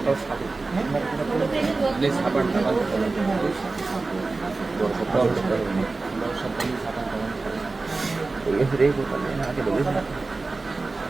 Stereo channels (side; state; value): left; quieter; 3.6 dB